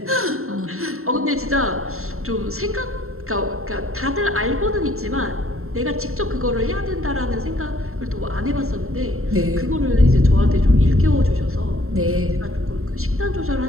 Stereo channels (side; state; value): left; late; 0.62 ms